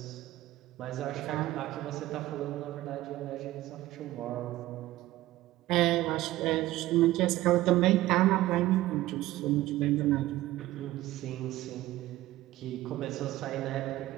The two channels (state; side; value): quieter; left; 16.3 dB